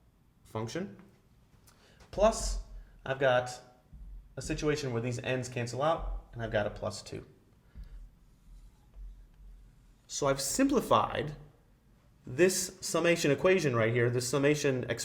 function. Plus, I've got a situation where these n's cancel out, and I've got a plus 2. So I've simplified this summation equation right here, this summation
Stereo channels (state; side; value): identical; both; correlation 1.00